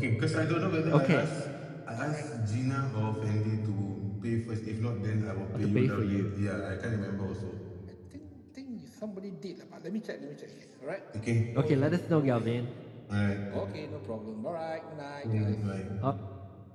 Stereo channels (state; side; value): identical; both; correlation 1.00